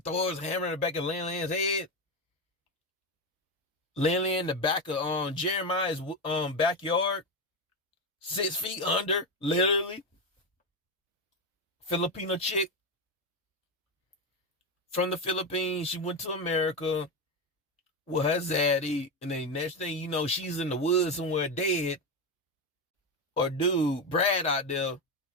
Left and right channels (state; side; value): normal; both; correlation 0.12